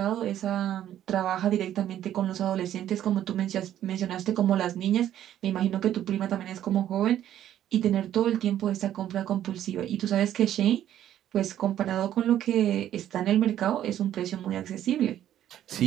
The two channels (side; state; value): left; quieter; 11.5 dB